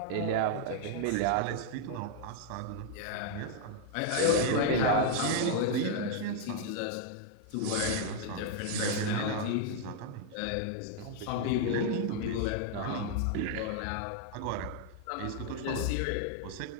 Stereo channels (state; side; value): different; both; correlation 0.00